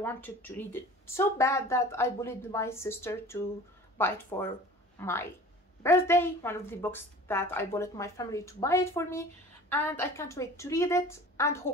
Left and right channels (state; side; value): normal; both; correlation 0.42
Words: to read it so bad that I bullied my sister to buy it for my birthday. One of the books that I bullied my family to buy it for me, and I can't wait to read it and